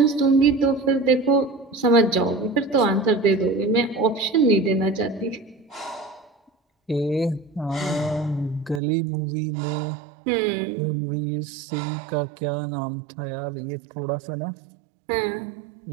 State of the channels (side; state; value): left; drops out; at 8.8 s